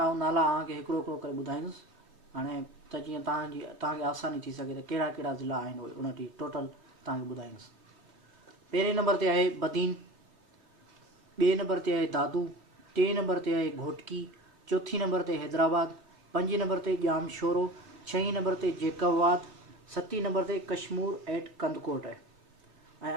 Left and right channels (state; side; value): late; left; 3.2 ms